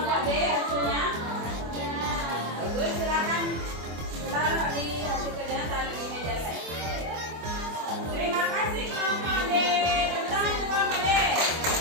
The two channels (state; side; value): late; left; 25 ms